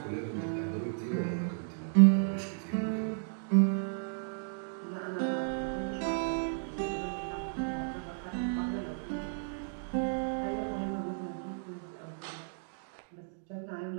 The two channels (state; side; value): silent; left; digital silence